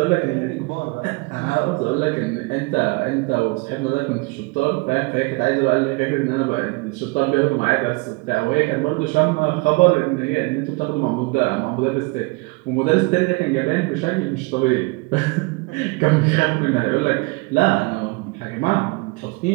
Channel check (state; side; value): quieter; left; 27.4 dB